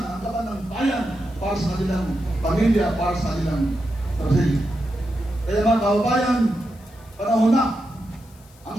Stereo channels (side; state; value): left; noise; hiss, 28 dB below the sound